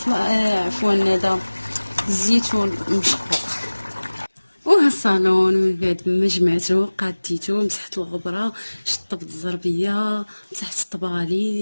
عفوا هذا الزيتون مشقوق. وها الصالون من بعد ما جمعته قاديته، مسحت الغبره، شطبت الزربيه، مسحت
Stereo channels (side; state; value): both; inverted; correlation -1.00